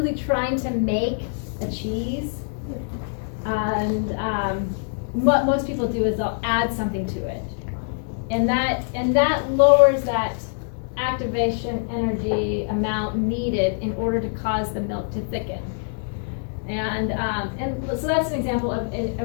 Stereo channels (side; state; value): right; silent; 63 dB below the other